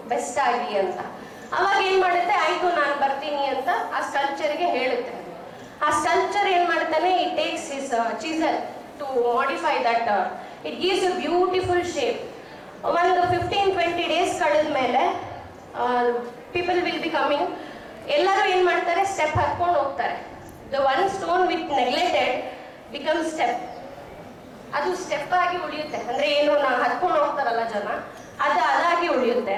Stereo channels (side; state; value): both; identical; correlation 1.00